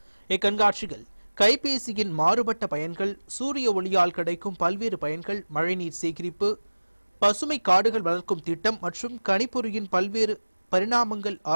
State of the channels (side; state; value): both; inverted; correlation -1.00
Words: இக்கண்காட்சியில் கைபேசியின் மாறுபட்ட பயன்கள், சூரிய ஒளியால் கிடைக்கும் பல்வேறு பயன்கள், மழைநீர் சேகரிப்பு, பசுமை காடுகள் வளர்க்கும் திட்டம் மற்றும் கணிப்பொறியின் பல்வேறு பரிணாமங்கள்